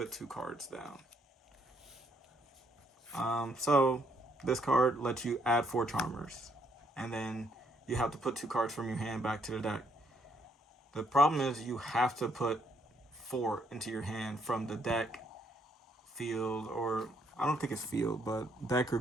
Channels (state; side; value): normal; both; correlation 0.71